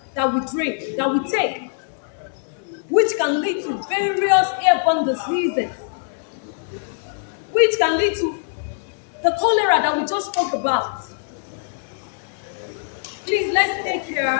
that we drink, that we take, which can lead to various airborne diseases, which can lead to the cholera that we just spoke about. Please, let's take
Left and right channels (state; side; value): silent; right; 64 dB below the other